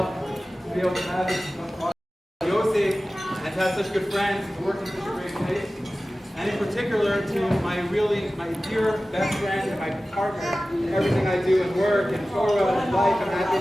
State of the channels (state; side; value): normal; both; correlation 0.96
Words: to be able to have this Yosef and to have such good friends, to work in such a great place. And in particular to my dear best friend and my partner in everything I do in work and Torah and life and